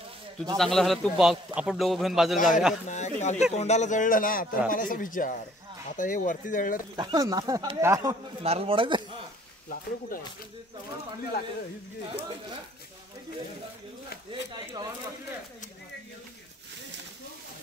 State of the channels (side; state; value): both; normal; correlation 0.59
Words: तुझं चांगलं झालं तू आपण दोघं घेऊन बाजूला जाऊया नाही काल ते तोंडाला जळलं ना तर मला असं विचार आता हे वरती जळलं नारळ पडायचं लाकडं कुठं आहे